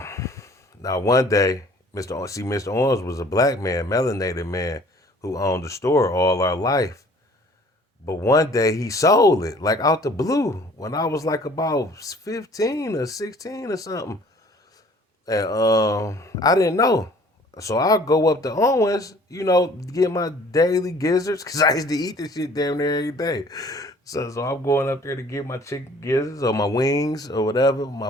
one day, Mr. Owens was a black man, melanated man, who owned the store all our life. But one day he sold it, like out the blue, when I was like about 15 or 16 or something. And I didn't know. So I'll go up to Owens, get my daily gizzards, because I used to eat this shit damn near every day. So I'm going up there to get my chicken gizzards or my wings or whatever, my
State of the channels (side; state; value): both; normal; correlation 0.53